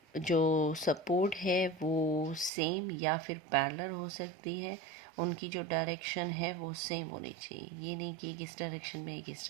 जो सपोर्ट है वो सेम या फिर पैरेलल हो सकती है, उनकी जो डायरेक्शन है वो सेम होनी चाहिए, ये नहीं कि एक इस डायरेक्शन में एक इस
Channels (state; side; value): drops out; left; at 2.5 s